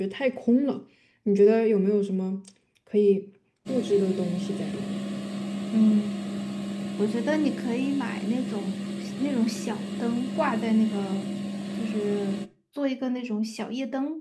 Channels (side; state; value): both; identical; correlation 1.00